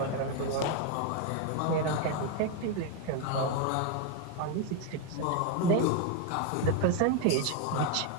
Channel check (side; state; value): both; different; correlation 0.01